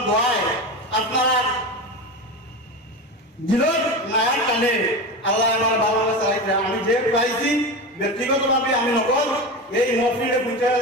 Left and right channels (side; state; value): both; normal; correlation 0.24